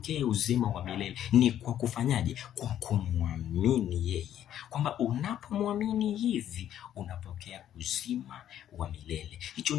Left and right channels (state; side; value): quieter; right; 11.0 dB